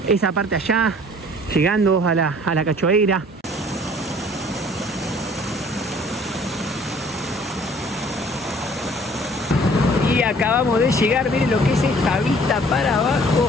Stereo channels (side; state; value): both; normal; correlation 0.54